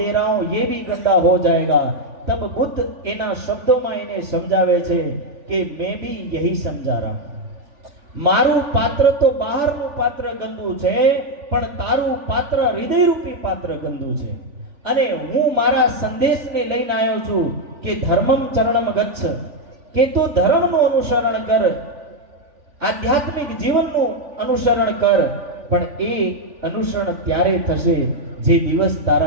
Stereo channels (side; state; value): left; late; 3.4 ms